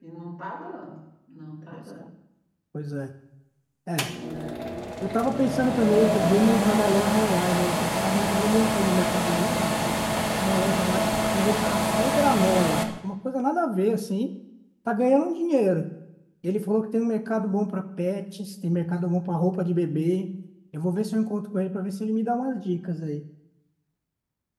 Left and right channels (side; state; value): both; identical; correlation 1.00